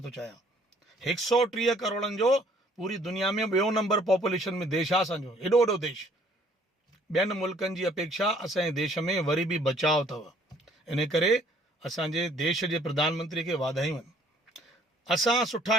थो चाहियां। 130 करोड़नि जो पूरी दुनिया में ॿियो नंबर पॉपुलेशन में देश आहे असांजो, एॾो वॾो देश। ॿियनि मुल्कनि जी अपेक्षा असांजे देश में वरी बि बचाव अथव। इन करे असांजे देश जे प्रधानमंत्री खे वाधायूं आहिनि। असां सुठा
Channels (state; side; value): normal; both; correlation 0.60